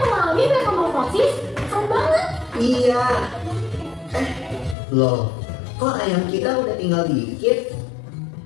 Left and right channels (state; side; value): drops out; right; at 4.8 s